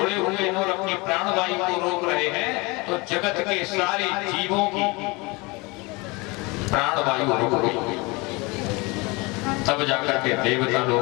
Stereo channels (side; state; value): right; quieter; 25.8 dB